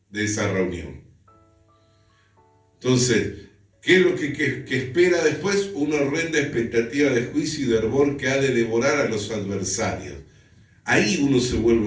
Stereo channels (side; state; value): both; identical; correlation 1.00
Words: de esa reunión. Entonces, ¿qué es lo que espera después? Una horrenda expectativa de juicio y de hervor que ha de devorar a los adversarios. Ahí uno se vuelve